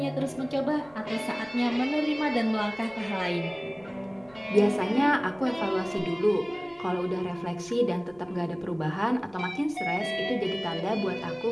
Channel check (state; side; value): noise; right; rumble, 28 dB below the sound